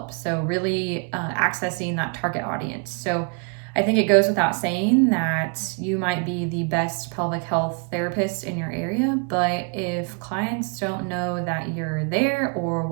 So really accessing that target audience. So I think it goes without saying that you might be the best pelvic health therapist in your area, but if clients don't know that you're there or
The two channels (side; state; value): left; quieter; 35.7 dB